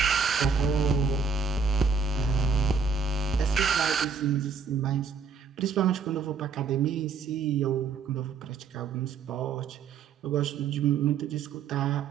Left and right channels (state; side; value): quieter; left; 5.5 dB